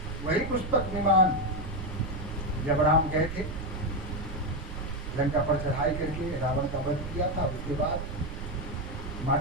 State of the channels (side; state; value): right; noise; rumble, 7 dB below the sound